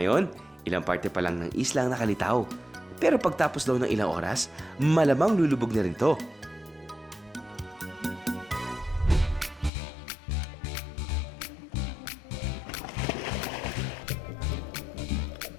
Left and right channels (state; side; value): drops out; right; at 9.7 s